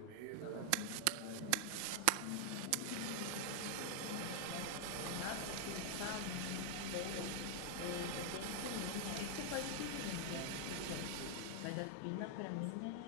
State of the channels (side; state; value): both; different; correlation 0.00